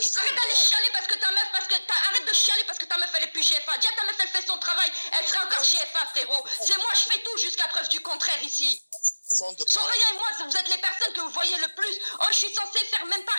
je fais. Arrête d'aller chialer parce que ta meuf, arrête de chialer parce que ta meuf elle est plus GFA. Dis à ta meuf elle fait son travail, elle serait encore GFA, frérot. C'est moi, je fais tout jusqu'à preuve du contraire ici. Soraya et moi, vous êtes les personnes que vous voyez le plus. Oh, je suis censée faire même pas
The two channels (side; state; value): both; inverted; correlation -1.00